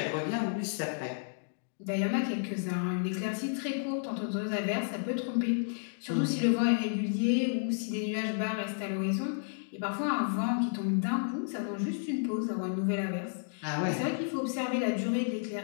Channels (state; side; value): silent; right; digital silence